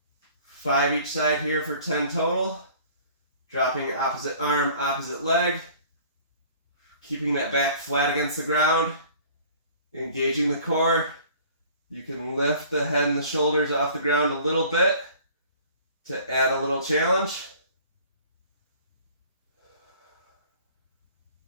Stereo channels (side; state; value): both; inverted; correlation -0.50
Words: 5 each side here for 10 total. Dropping opposite arm, opposite leg. Keeping that back flat against the ground. Engaging the core. You can lift the head and the shoulders off the ground a little bit to add a little challenge.